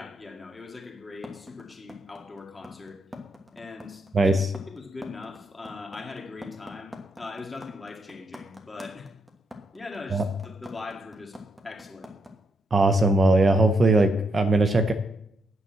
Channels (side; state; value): both; normal; correlation 0.79